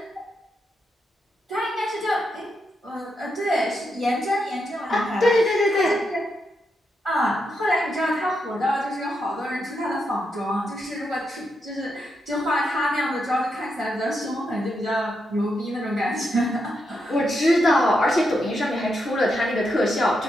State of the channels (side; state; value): both; normal; correlation 0.83